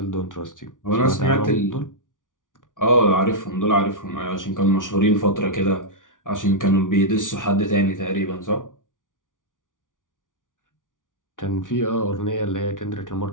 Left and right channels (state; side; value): late; right; 0.88 ms